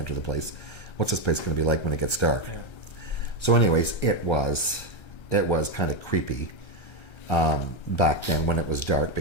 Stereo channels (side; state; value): right; late; 1.3 ms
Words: the place, what's this place going to be like when it gets dark? Yeah. So anyways, it was kind of creepy back then when it was dark,